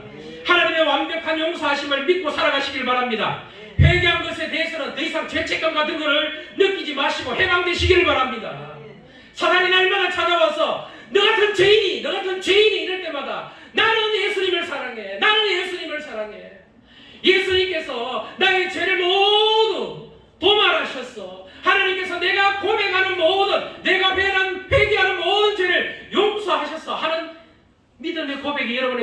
하나님의 완벽한 용서하심을 믿고 살아가시길 바랍니다. 회개한 것에 대해서는 더 이상 죄책감 같은 것을 느끼지 마시고 해방되시기를 바랍니다. 사단이 날마다 찾아와서 너 같은 죄인이 이럴 때마다 나는 예수님을 사랑해. 나는 예수님을 사랑해. 예수님께서 나의 죄를 모두 도말하셨어. 하나님께서 내가 고백하는 모든, 내가 회개하는 모든 죄를 용서하셨어 하는 믿음의 고백이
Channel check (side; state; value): both; identical; correlation 1.00